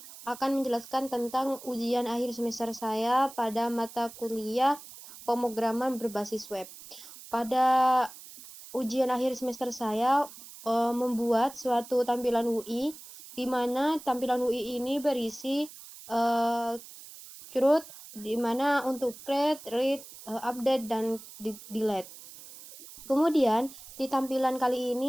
akan menjelaskan tentang ujian akhir semester saya pada mata kuliah pemrograman berbasis web. Pada ujian akhir semester saya membuat suatu tampilan UI, di mana tampilan UI ini berisi CRUD, di mana untuk create, read, update, dan delete. Kemudian di tampilan kali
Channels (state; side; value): noise; right; hiss, 16 dB below the sound